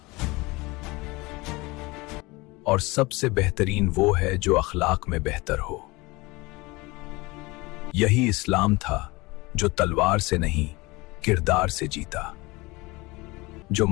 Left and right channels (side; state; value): right; quieter; 23.1 dB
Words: اور سب سے بہترین وہ ہے جو اخلاق میں بہتر ہو۔ یہی اسلام تھا جو تلوار سے نہیں، کردار سے جیتا، جو